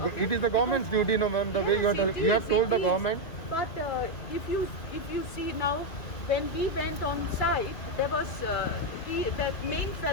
It is the government's duty, no ma'am, the way you have told the government. But if you see now, when we went on site, there was that main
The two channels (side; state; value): right; late; 2.2 ms